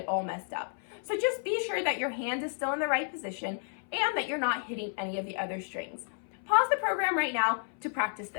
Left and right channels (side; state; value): right; silent; 57 dB below the other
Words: all messed up. So just be sure that your hand is still in the right position and that you're not hitting any of the other strings. Pause the program right now to practice